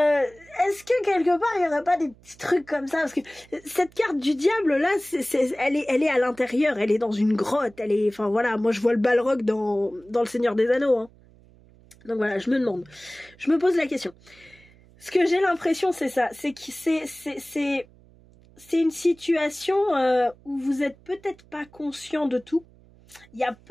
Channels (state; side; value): noise; right; hum, 27 dB below the sound